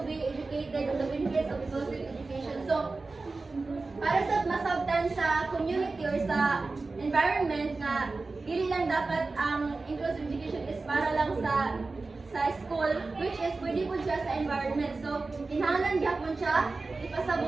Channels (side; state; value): left; quieter; 3.7 dB